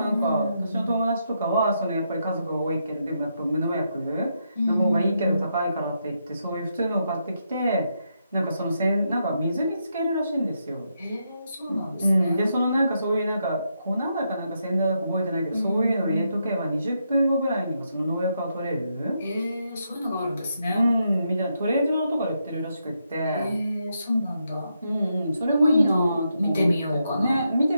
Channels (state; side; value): inverted; both; correlation -0.81